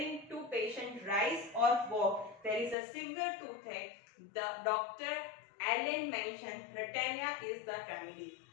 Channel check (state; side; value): drops out; right; at 2.8 s